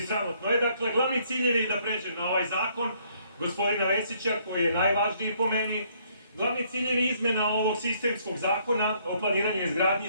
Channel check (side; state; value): both; inverted; correlation -0.66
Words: sramotno. Dakle, glavni ciljevi da pređem na ovaj zakon gospodina Vesića, koji je najvažniji po meni. Glavni ciljevi izmena ovog sistemskog zakona o planiranju i